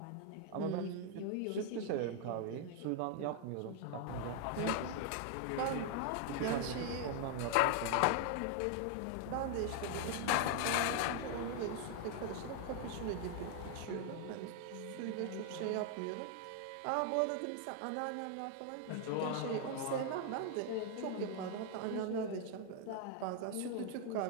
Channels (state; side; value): different; both; correlation 0.00